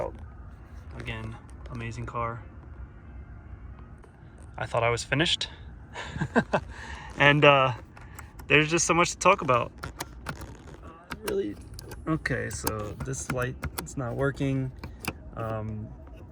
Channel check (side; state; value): both; identical; correlation 1.00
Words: Again, amazing car. I thought I was finished. And there's just so much to talk about. Really? Okay, so this light, it's not working.